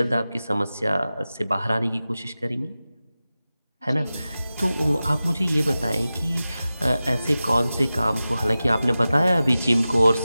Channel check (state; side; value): inverted; both; correlation -0.95